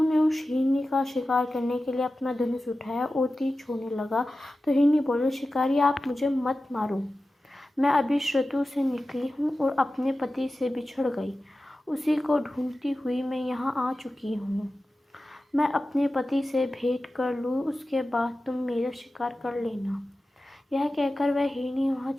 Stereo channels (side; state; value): both; normal; correlation 0.94